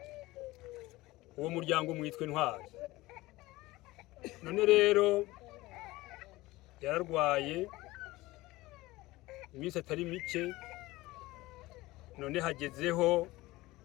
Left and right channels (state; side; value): quieter; right; 19.3 dB